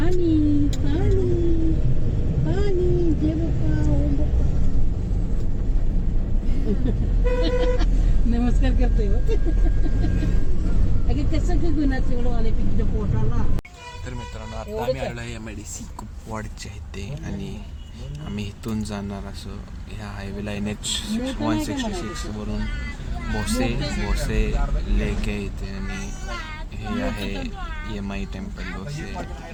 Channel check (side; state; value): both; identical; correlation 1.00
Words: पाणी पाणी जे नमस्कार करतोय अगे कसं की गुणाचं एवढं आले पिकच्या पोटाला. तर मित्रांनो आता आम्ही आलो आहे MIDC कुपवाडच्या इथे आणि आम्ही इथून जाणार असं ह्या हायवेला NH 166 वरून भोसे लेक आहे इथे आणि हे आहे MI टेम्पल भोसे.